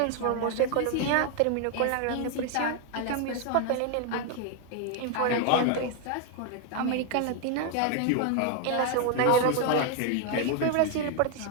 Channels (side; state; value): both; different; correlation 0.01